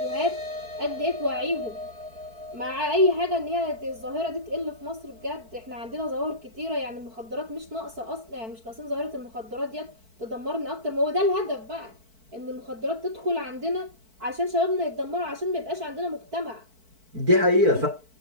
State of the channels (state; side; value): late; left; 4.5 ms